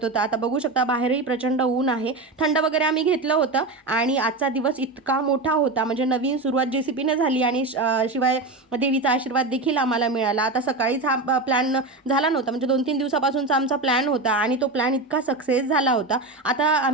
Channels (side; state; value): left; quieter; 3.3 dB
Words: होतं. आता बघू शकता बाहेरही प्रचंड ऊन आहे, थंड वगैरे आम्ही घेतलं होतं. आणि आजचा दिवस इतका मोठा होता, म्हणजे नवीन सुरुवात JCPने झाली आणि शिवाय देवीचा आशीर्वाद देखील आम्हाला मिळाला. आता सकाळीच हा प्लॅन झाला नव्हता, म्हणजे 2-3 दिवसापासूनचा आमचा प्लॅन होता आणि तो प्लॅन इतका सक्सेस झाला होता. आता